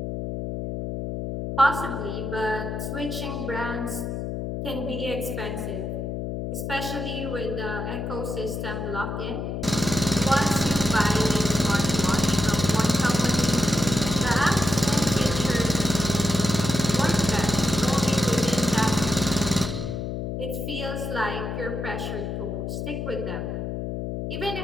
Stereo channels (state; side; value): noise; left; hum, 4 dB below the sound